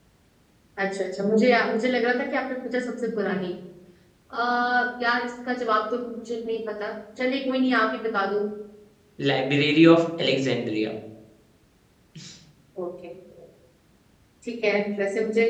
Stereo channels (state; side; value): identical; both; correlation 1.00